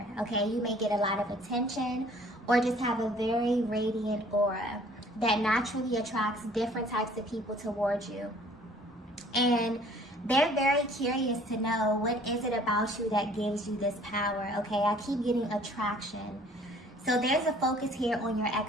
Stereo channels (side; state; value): both; normal; correlation 0.55